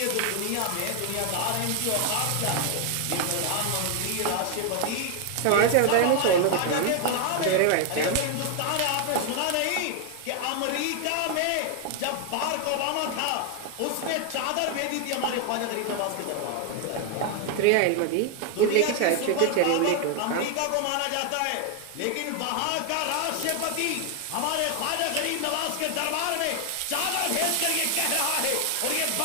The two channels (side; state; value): both; different; correlation 0.00